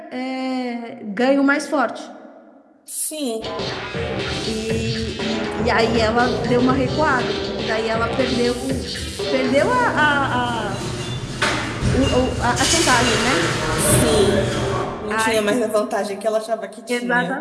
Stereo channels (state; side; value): identical; both; correlation 1.00